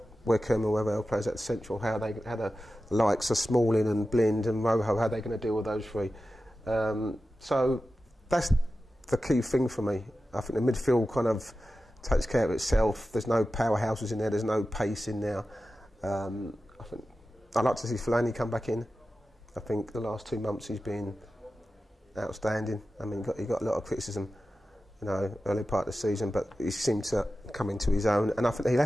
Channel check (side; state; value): both; normal; correlation 0.93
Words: Wickham, whoever else plays at central, how the likes of Smalling and Blind and Rojo, how they're going to deal with those three. So that's the key thing for me. I think the midfield kind of takes care of itself. There's no powerhouses in there. There's no pace in there. I think I'd like to see Fellaini come back in. I think the last 2 months he's been outstanding. I mean, he got a lot of criticism, you know, early part of the season, but he seemed to come into his own. And I think